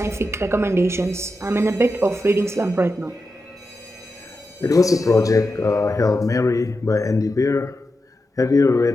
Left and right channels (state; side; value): normal; both; correlation 0.89